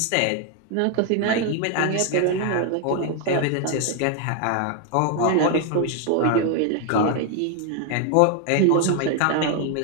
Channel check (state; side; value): different; both; correlation 0.00